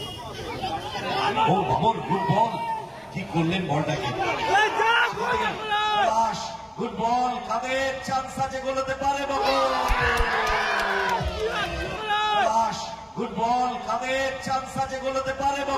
ও বাবর, গুড বল, কি করলেন বলটাকে? গুড বল, কাদের চান্স আছে, গোলতে পারে বাবর। গুড বল, কাদের চান্স আছে, গোলতে পারে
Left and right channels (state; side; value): identical; both; correlation 1.00